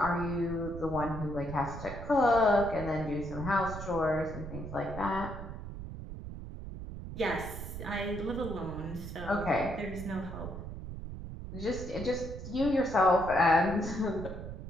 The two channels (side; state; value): right; noise; rumble, 9 dB below the sound